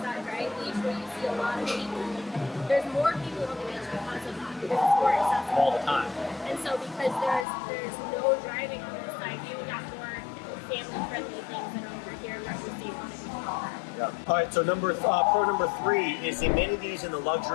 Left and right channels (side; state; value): right; drops out; at 7.5 s